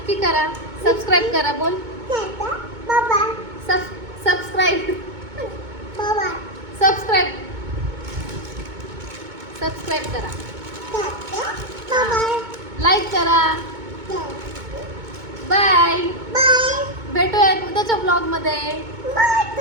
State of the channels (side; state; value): left; late; 2.2 ms